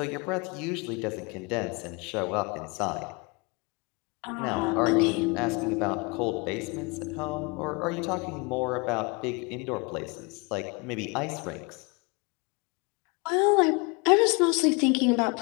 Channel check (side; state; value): right; quieter; 29.4 dB